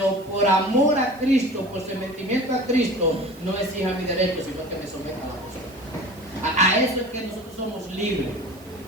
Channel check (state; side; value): noise; right; hiss, 25 dB below the sound